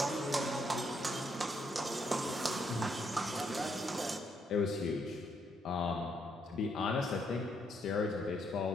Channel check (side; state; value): both; normal; correlation 0.75